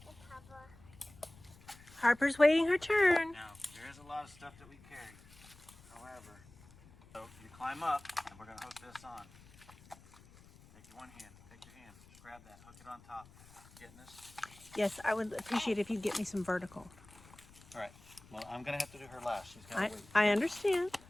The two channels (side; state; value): left; noise; rumble, 23 dB below the sound